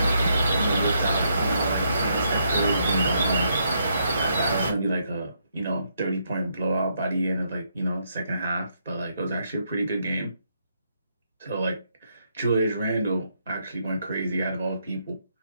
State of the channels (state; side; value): inverted; both; correlation -0.76